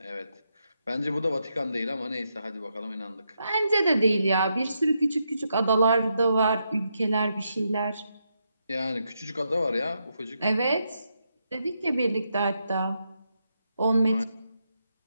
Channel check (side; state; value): both; inverted; correlation -0.82